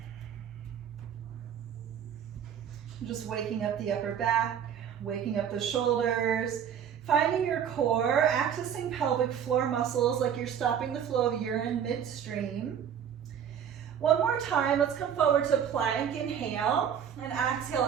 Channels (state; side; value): quieter; left; 8.6 dB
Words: Just waking up the upper back, waking up the shoulders, finding your core, accessing pelvic floor muscles like you're stopping the flow of urine midstream. One more time, let's come forward to plank, inhale, and exhale